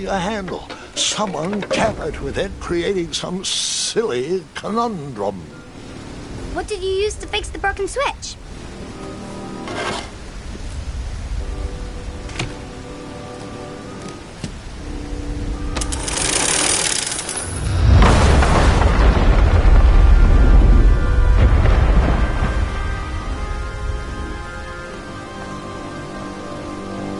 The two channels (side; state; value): both; identical; correlation 1.00